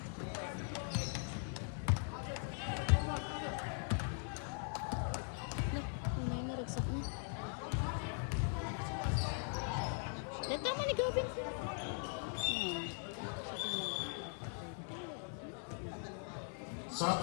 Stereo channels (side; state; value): right; silent; 51 dB below the other